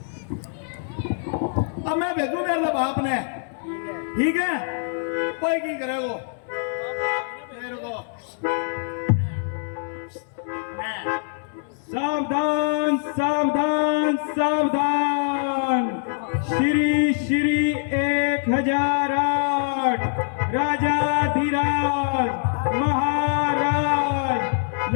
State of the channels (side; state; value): right; silent; 63 dB below the other